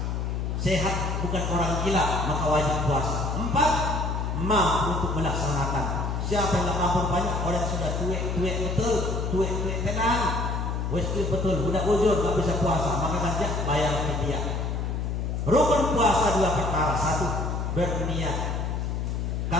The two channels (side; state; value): left; noise; hum, 1 dB below the sound